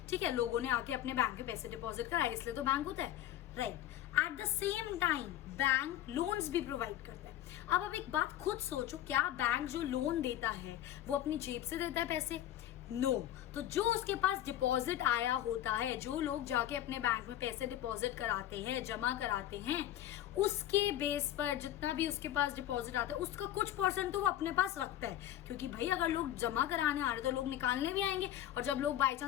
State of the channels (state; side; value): quieter; right; 12.6 dB